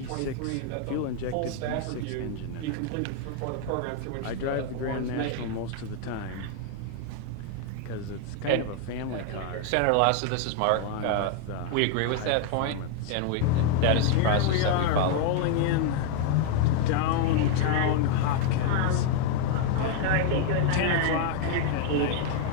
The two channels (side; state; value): both; different; correlation 0.00